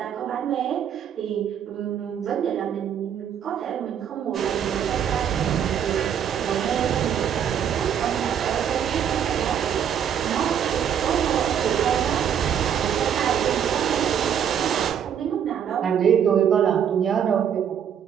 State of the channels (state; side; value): quieter; left; 8.7 dB